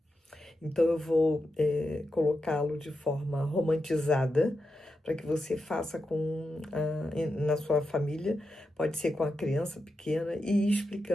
Então, eu vou colocá-lo de forma romantizada, para que você faça na sua família, pode ser com a criança pequena, e ir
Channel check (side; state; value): both; normal; correlation 0.87